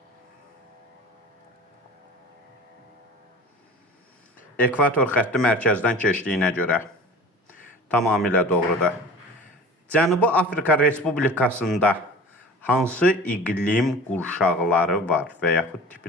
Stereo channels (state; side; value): normal; both; correlation 0.40